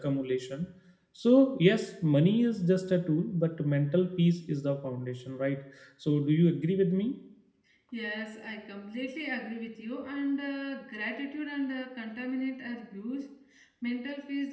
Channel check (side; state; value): both; identical; correlation 1.00